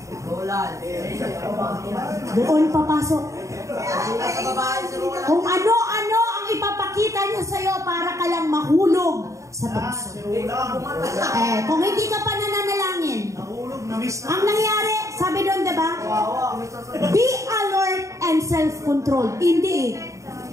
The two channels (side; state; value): left; late; 0.15 ms